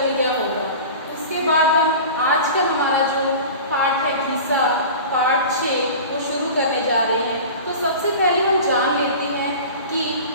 गया होगा। उसके बाद हम आज का हमारा जो पाठ है घिसा, पाठ 6, वो शुरू करने जा रहे हैं। तो सबसे पहले हम जान लेते हैं कि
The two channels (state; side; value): inverted; both; correlation -0.36